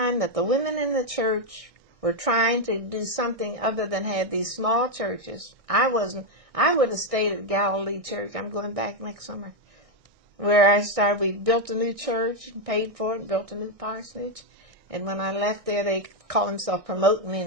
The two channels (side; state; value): left; late; 1.6 ms